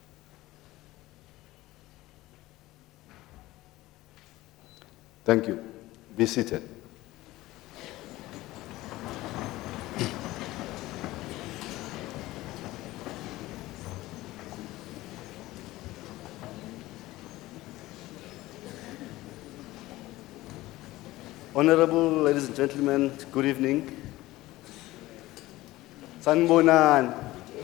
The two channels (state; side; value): quieter; right; 17.8 dB